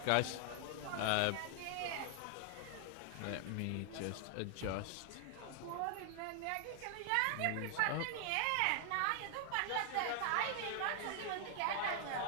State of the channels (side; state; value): both; different; correlation 0.00